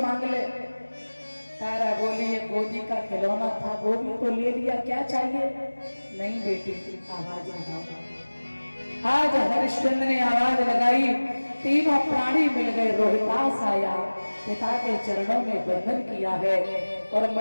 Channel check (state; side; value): inverted; both; correlation -1.00